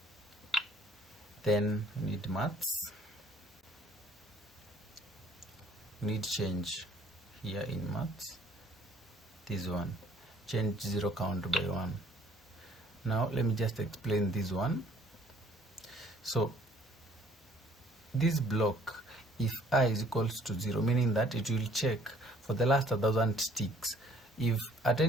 then we need maths, we need change here in maths, this one, change 0 count by 1. Now let me just explain this one. So this block, if I is equals to 0, meaning that it will check for the last 1,000 ticks. If at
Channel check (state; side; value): normal; both; correlation 0.59